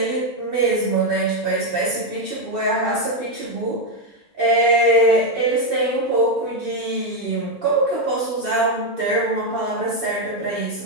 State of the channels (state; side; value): normal; both; correlation 0.04